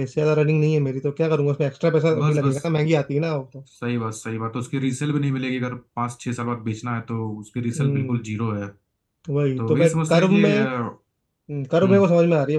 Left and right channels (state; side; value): identical; both; correlation 1.00